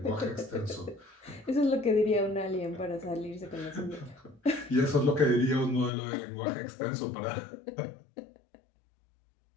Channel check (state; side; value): drops out; right; at 5.9 s